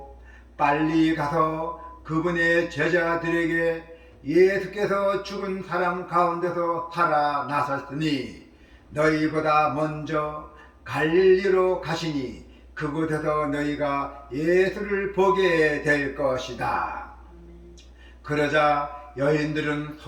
빨리 가서 그분의 제자들에게 예수께서 죽은 사람 가운데서 살아나셨으니 너희보다 먼저 갈릴리로 가시니 그곳에서 너희가 예수를 보게 될 것이다. 그러자 여인들은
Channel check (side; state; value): both; identical; correlation 1.00